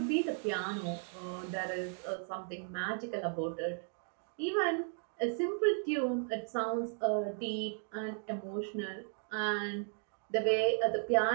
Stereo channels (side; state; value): left; silent; 54 dB below the other